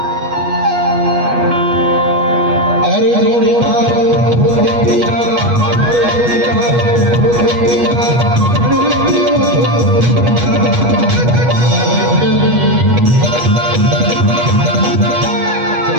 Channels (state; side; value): late; left; 8.3 ms